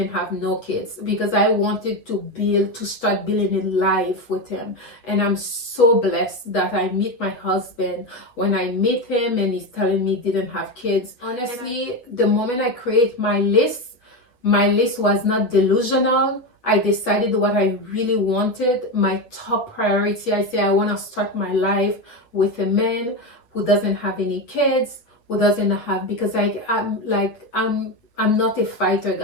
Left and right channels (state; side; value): late; right; 8.5 ms